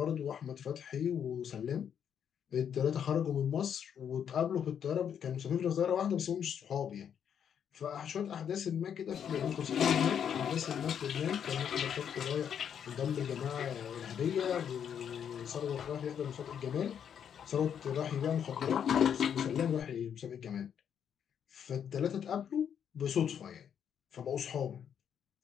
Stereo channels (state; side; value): quieter; right; 8.4 dB